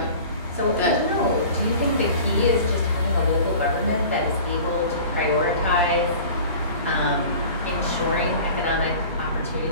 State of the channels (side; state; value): both; inverted; correlation -0.42